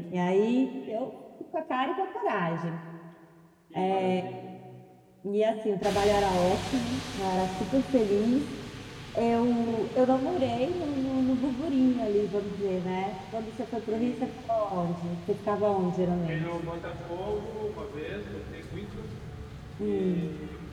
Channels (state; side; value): identical; both; correlation 1.00